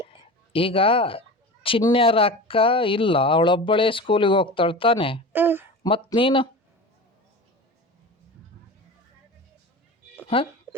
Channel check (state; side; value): normal; both; correlation 0.31